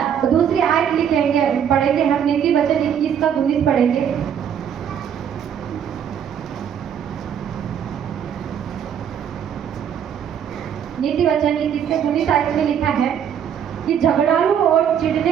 तो दूसरी आयत लिखेंगे, पढ़ेंगे हम नीति वचन 21 का 19 पढ़ेंगे। नीति वचन 21:19 में लिखा है कि झगड़ालू और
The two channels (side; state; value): left; quieter; 8.6 dB